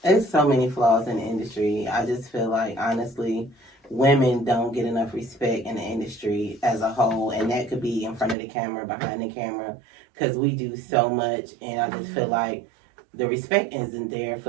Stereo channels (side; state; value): left; drops out; at 8.3 s